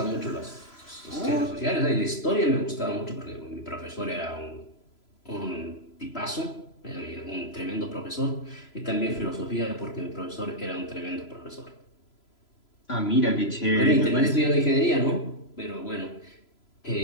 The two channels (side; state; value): right; late; 3.0 ms